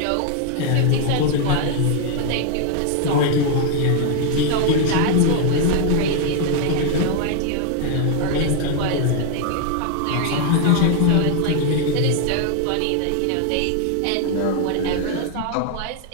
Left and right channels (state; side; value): different; both; correlation 0.00